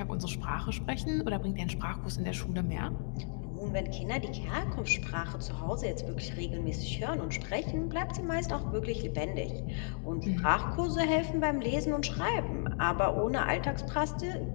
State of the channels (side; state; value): right; silent; digital silence